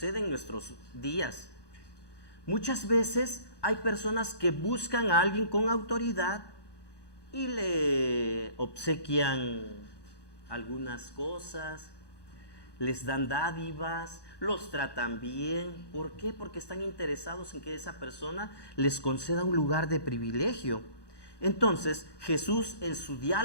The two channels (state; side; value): late; right; 1.2 ms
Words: en nuestros días. Muchas veces hay personas que buscan a alguien con autoridad y le obsequian algunas cosas, les dan dádivas, los tratan bien. ¿Por qué? Porque están interesados en que esa persona les conceda un lugar de privilegio. Entonces Jesús, en su